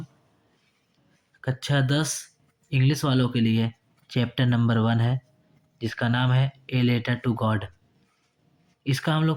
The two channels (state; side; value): identical; both; correlation 1.00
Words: कक्षा 10 इंग्लिश वालों के लिए चैप्टर नंबर 1 है, जिसका नाम है ए लेटर टू गॉड। इसका हम